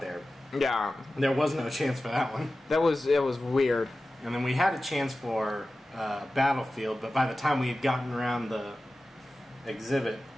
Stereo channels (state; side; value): normal; both; correlation 0.95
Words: there. Yeah. There was no chance for that one. It was weird. And then we had a chance for Battlefield, but by the time we had gotten around the exhibit,